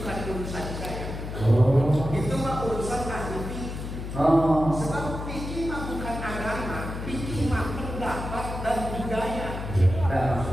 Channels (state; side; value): noise; left; hum, 7 dB below the sound